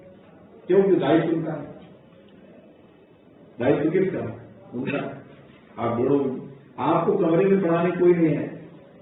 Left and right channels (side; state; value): both; identical; correlation 1.00